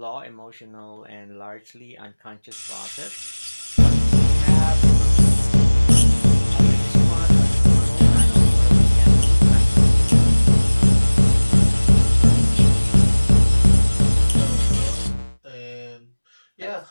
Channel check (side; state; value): both; inverted; correlation -1.00